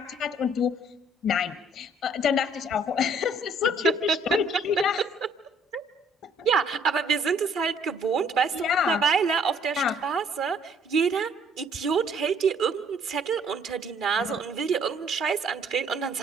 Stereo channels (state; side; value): normal; both; correlation 0.61